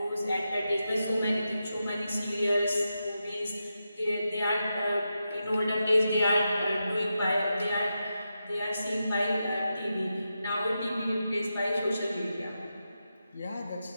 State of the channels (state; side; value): inverted; both; correlation -0.88